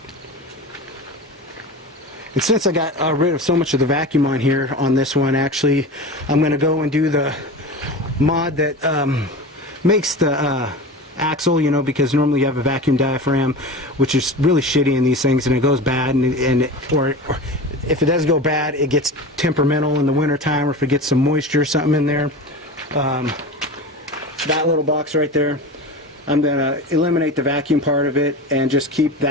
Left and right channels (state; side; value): normal; both; correlation 0.30